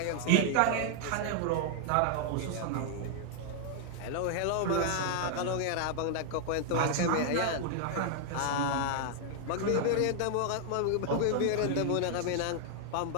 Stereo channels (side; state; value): both; different; correlation 0.00